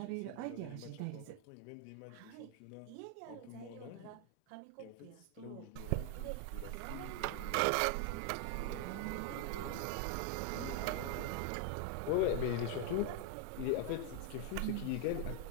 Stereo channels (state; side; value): different; both; correlation 0.00